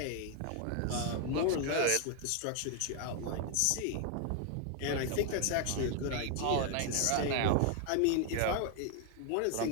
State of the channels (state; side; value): different; both; correlation 0.00